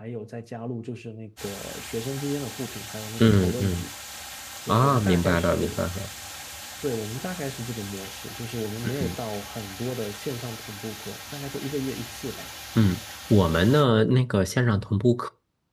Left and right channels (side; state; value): both; identical; correlation 1.00